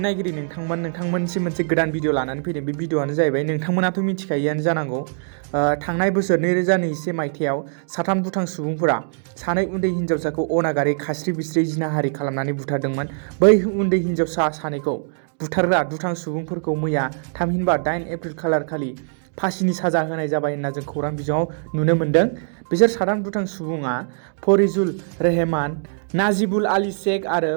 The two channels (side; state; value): left; silent; digital silence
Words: नायगिरि नोंथांमोनसिम मोनसे गोदान भिडिअ लानानै फैदों। बे भिडिअआनो जाहैबाय नोंथांमोनाथ' मिथिखायोआनो जानांगौ थांनाय बोसोर 2021 मायथाइयाव साथाम दुथां सुबुंफोरा सानै उन्दै हिन्जावसाखौ अनागारि खास्रि बिस्रि जिनाहारि खालामनानै बुथारदोंमोन। बै उन्दै हिन्जावसा सानैखौ बुथारग्रा दुथां सुबुंफोरखौ मैया थामहिनबा 8 एप्रिल खालारखालि फासिनि साजा होनाय जाबाय होनना जों खौरां बिजोङाव नुनो मोन्दों। बिसोर साथाम दुथां सुबुङा फरिजुल रेहमान, नाजिबुल आली शेख आरो